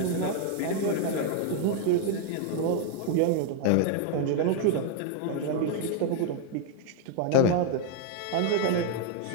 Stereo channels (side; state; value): both; different; correlation 0.00